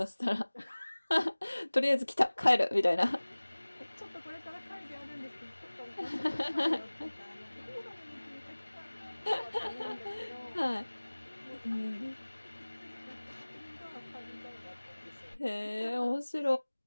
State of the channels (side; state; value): both; inverted; correlation -1.00